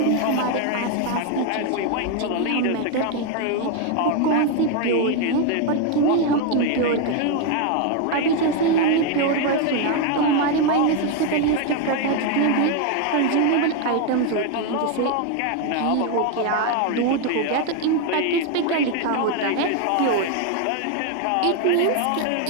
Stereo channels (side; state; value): both; different; correlation 0.01